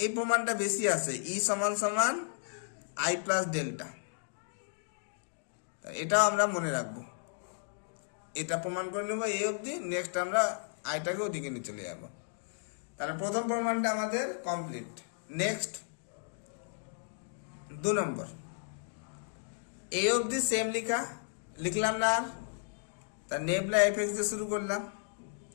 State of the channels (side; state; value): right; silent; digital silence